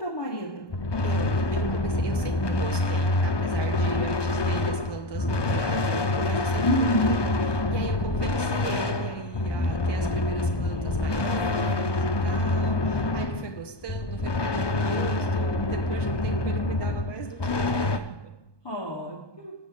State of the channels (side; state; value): right; late; 1.2 ms